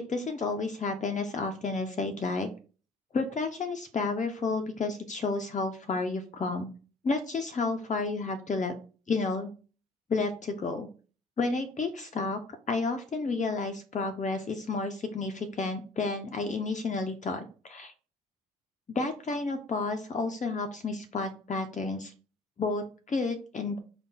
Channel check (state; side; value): quieter; right; 3.2 dB